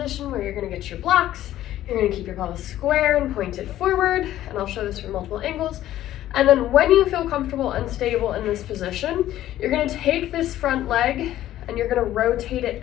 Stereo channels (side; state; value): right; quieter; 13.4 dB